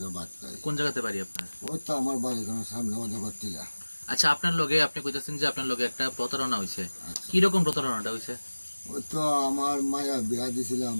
বাদ পাই। কোন জায়গাতে বাড়ি আপনার? ওই তো আমার বাড়ির সামনে অজগর টিলা। আচ্ছা, আপনার লগে আপনি কইতেছেন যে আপনার লগে একটা প্রতারণা হয়েছে। কি রকম প্রতারণাটা হয়েছে? ওই তো আমার মায়া বিয়া দিছিলাম,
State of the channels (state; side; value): inverted; both; correlation -1.00